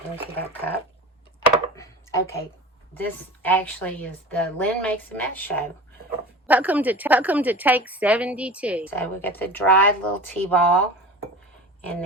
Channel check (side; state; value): both; normal; correlation 0.34